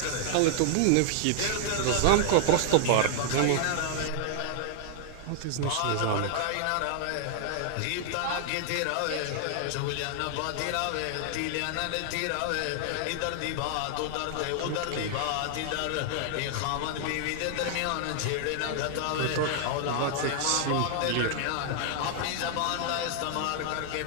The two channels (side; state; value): both; different; correlation -0.01